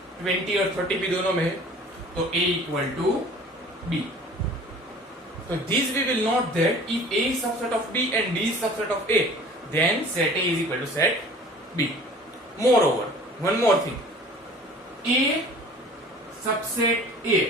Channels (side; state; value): both; normal; correlation 0.46